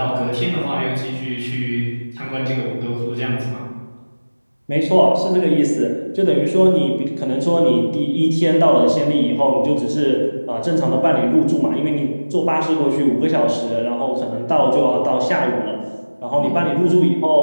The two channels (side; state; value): both; inverted; correlation -1.00